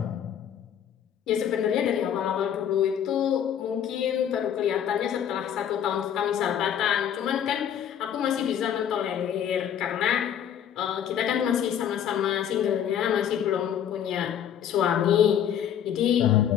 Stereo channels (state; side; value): quieter; right; 9.4 dB